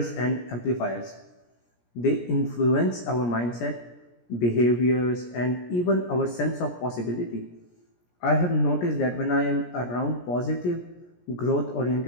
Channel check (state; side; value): late; right; 17 ms